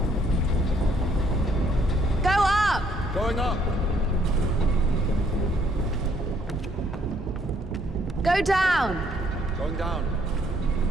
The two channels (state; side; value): normal; both; correlation 0.67